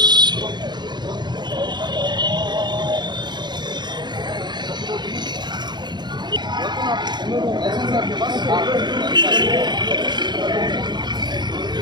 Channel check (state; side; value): late; left; 0.21 ms